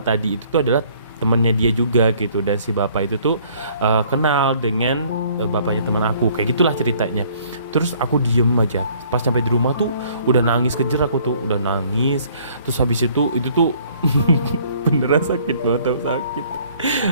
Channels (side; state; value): both; inverted; correlation -0.59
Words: tadi itu tuh adalah temannya dia juga gitu. Dan si bapak itu tuh kenal dengan bapaknya teman aku, kayak gitulah ceritanya. Terus aku diem aja, pas sampai di rumah tuh udah nangis kejer, aku tuh udah nangis. Terus habis itu tuh beneran sakit banget, tau sakit.